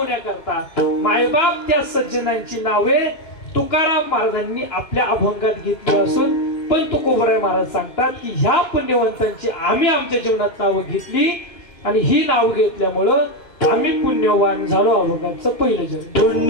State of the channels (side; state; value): right; late; 3.0 ms